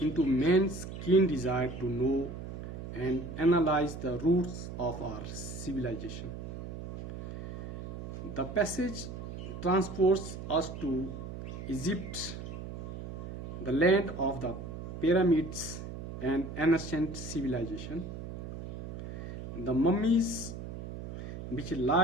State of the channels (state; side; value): noise; right; hum, 9 dB below the sound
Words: man's keen desire to know and analyze the roots of our civilization. The passage transports us to Egypt, the land of the pyramids and ancient civilization. The mummies which